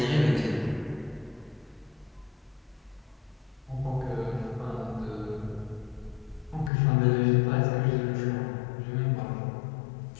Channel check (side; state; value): right; drops out; at 6.7 s